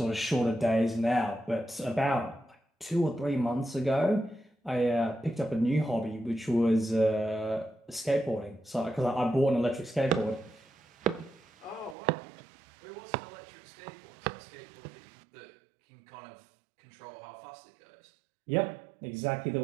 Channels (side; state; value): left; drops out; at 12.0 s